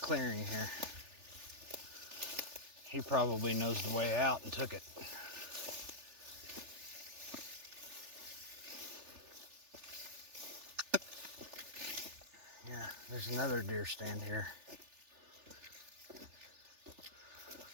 here. He probably knows the way out and took it. Yeah, there's another deer stand here.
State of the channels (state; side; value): late; left; 3.4 ms